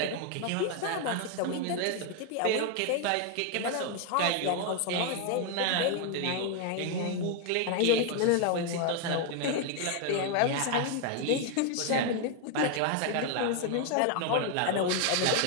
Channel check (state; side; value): different; both; correlation 0.01